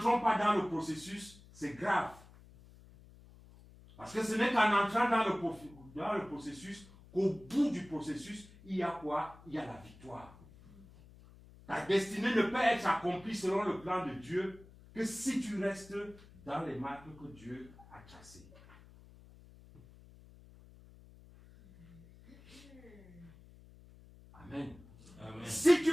pas dans le processus, c'est grave. Parce que ce n'est qu'en entrant dans le processus qu'au bout du processus, il y a quoi? Il y a la victoire. Ta destinée ne peut être accomplie selon le plan de Dieu que si tu restes dans les marques que Dieu a tracées. Amen. Amen. Si tu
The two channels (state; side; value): noise; left; hum, 22 dB below the sound